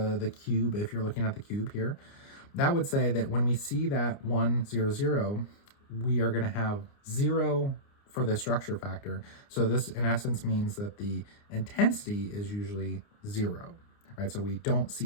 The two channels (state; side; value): late; right; 29 ms